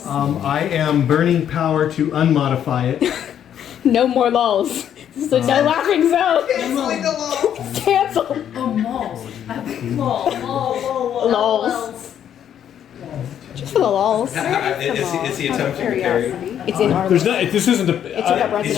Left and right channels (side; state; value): right; quieter; 9.6 dB